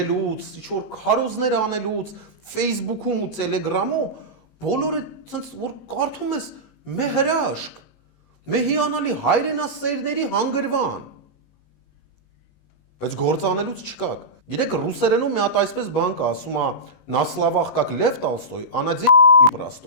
ինչ-որ քարոզներ անելուց, Facebook-ում ու Telegram-ում, բոլորը սենց որ կարդում ես մե հրաշք, մե հիանալի հայրենասերների հանգրվան, բայց գործանելուց չկաք։ Գիտեք, ռուսերենում մի հատ այսպես բան կա, ասում է «На словах как Лев Толстой, а на деле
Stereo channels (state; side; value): late; right; 19 ms